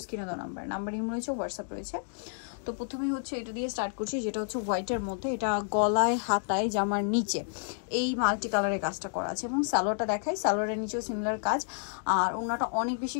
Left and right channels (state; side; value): silent; right; digital silence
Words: স্ক্রিনে দেওয়া নাম্বার ইমেল রয়েছে, হোয়াটসঅ্যাপ রয়েছে। তো প্রথমে হচ্ছে এটা দিয়ে স্টার্ট করছি, যেটা হচ্ছে হোয়াইটের মধ্যে। এটা গলায় হাতায় জামার নিচে এই মাল্টি কালারের কাজটা করা আছে এবং সালোয়ারটা দেখাই, সালোয়ারের নিচেও সিমিলার কাজ। আর ওড়নাটা অনেক বেশি